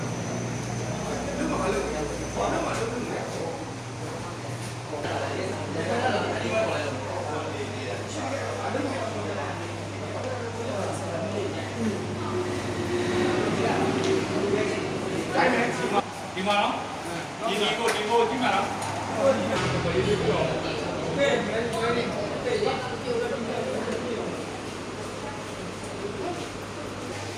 ဒီမှာနော်ဒီကိုကြည့်မှာနော်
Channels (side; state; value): both; identical; correlation 1.00